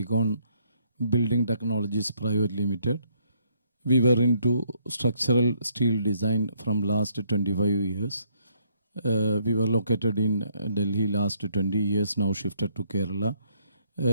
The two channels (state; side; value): inverted; both; correlation -0.70